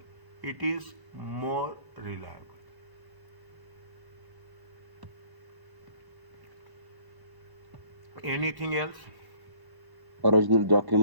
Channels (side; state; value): left; late; 1.1 ms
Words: It is more reliable. Anything else? Original